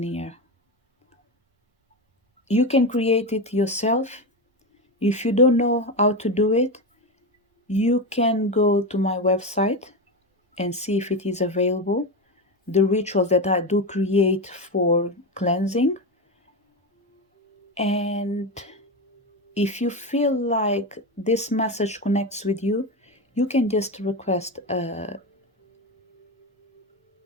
here. You can create it yourself. If you don't know how to do it, you can go to my website and see if it is available. The rituals that I do create for cleansing. And if you feel like this message connects with you, you can just request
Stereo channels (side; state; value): both; normal; correlation 0.16